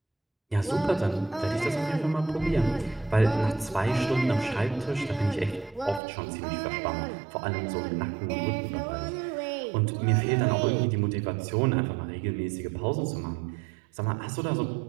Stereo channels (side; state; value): left; drops out; at 6.0 s